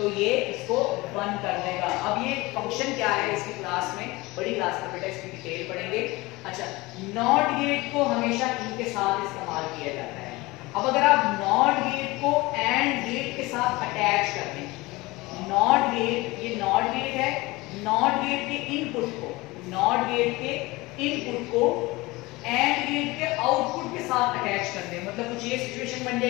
ये इसको 1 कर देगा। अब ये फंक्शन क्या है इसकी क्लास में, बड़ी क्लास में बेटा इसकी डिटेल पढ़ेंगे। अच्छा, नॉट गेट को हमेशा इनके साथ इस्तेमाल किया जाता है। अब अगर आप नॉट गेट को एंड गेट के साथ अटैच कर दें, नॉट गेट, ये नॉट गेट है, नॉट गेट के इनपुट को, नॉट गेट के इनपुट को एंड गेट के आउटपुट के साथ अटैच कर दें, मतलब कुछ ये सिचुएशन बन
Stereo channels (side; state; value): right; quieter; 21.8 dB